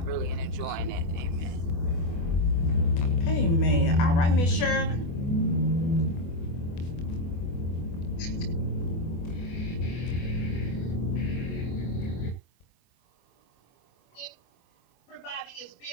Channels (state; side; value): late; right; 24 ms